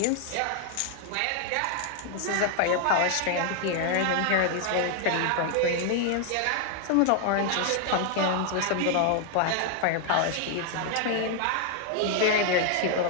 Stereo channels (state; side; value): different; both; correlation 0.00